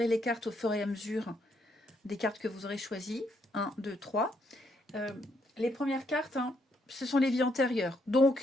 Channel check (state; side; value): normal; both; correlation 0.74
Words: les cartes au fur et à mesure des cartes que vous aurez choisies. 1, 2, 3. Les premières cartes, hein, ce sont les vies antérieures.